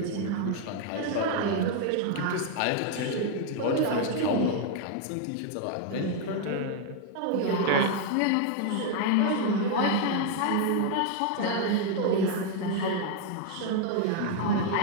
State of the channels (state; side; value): different; both; correlation 0.00